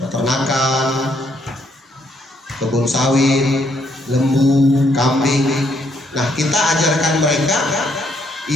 kebun sawit, lembu, kambing. Nah, kita ajarkan mereka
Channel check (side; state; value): both; normal; correlation 0.72